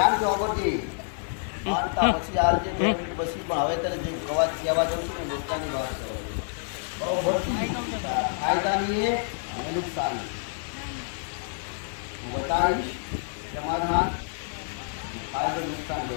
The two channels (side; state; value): right; silent; digital silence